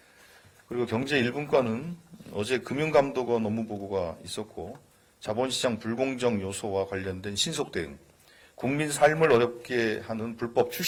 그리고 경제 1분과는 어제 금융감독원 업무보고가 있었고 자본시장 불공정 요소와 관련된 신속 대응, 국민 삶을 어렵게 하는 불법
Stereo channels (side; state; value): both; identical; correlation 1.00